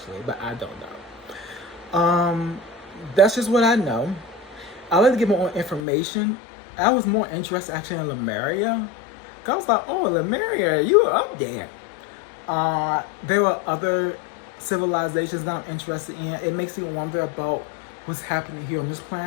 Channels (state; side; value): drops out; right; at 5.8 s